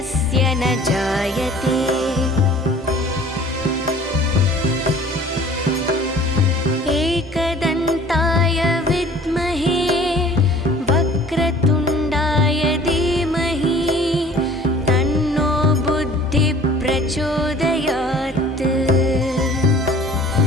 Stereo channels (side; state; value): both; normal; correlation 0.50